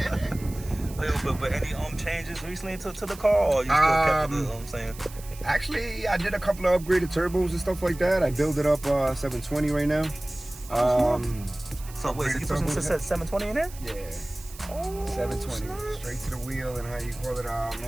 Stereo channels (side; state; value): right; noise; hiss, 18 dB below the sound